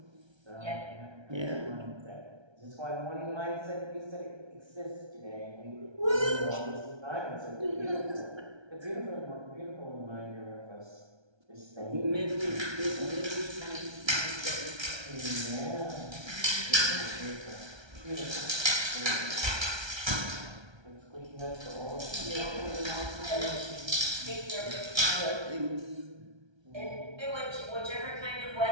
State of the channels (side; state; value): left; late; 1.3 ms